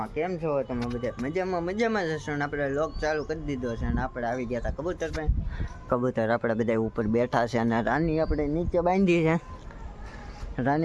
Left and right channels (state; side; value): identical; both; correlation 1.00